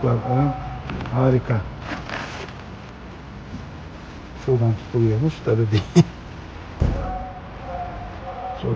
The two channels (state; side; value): identical; both; correlation 1.00